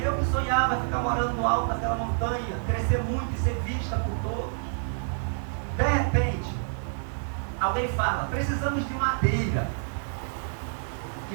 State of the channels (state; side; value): silent; left; digital silence